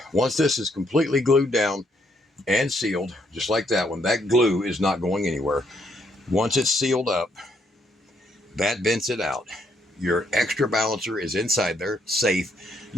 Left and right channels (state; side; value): normal; both; correlation 0.72